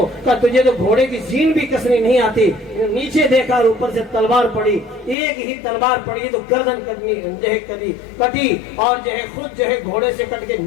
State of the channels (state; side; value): drops out; right; at 5.2 s